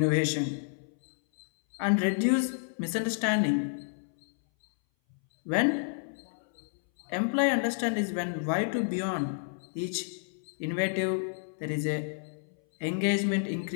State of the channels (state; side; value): silent; right; 58 dB below the other